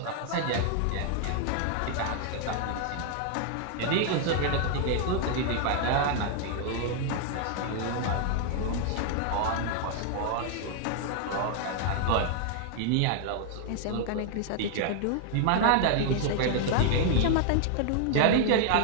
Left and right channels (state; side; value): different; both; correlation 0.00